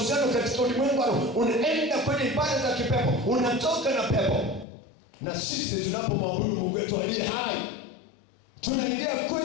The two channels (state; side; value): drops out; right; at 4.7 s